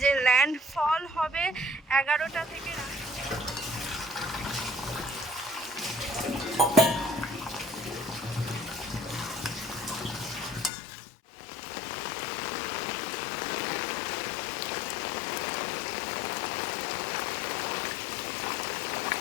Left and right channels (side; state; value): right; drops out; at 10.7 s